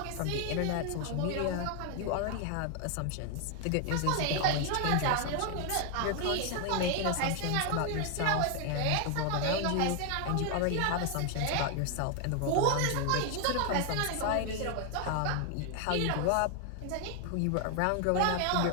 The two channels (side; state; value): both; different; correlation 0.00